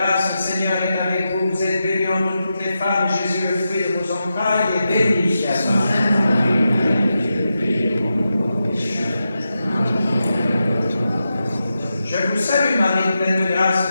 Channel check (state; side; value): inverted; both; correlation -0.89